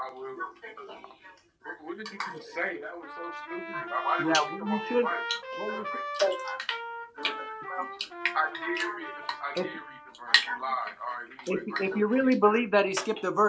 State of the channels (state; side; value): identical; both; correlation 1.00